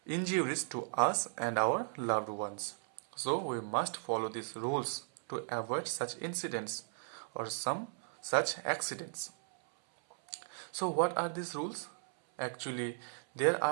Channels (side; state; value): left; silent; 54 dB below the other